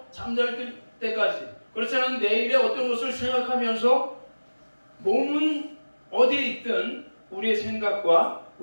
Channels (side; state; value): both; inverted; correlation -1.00